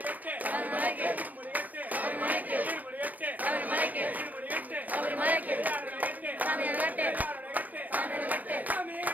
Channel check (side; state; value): left; late; 0.080 ms